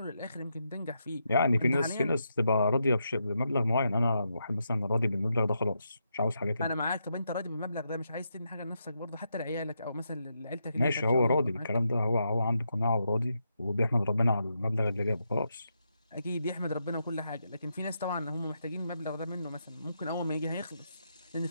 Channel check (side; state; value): both; inverted; correlation -0.83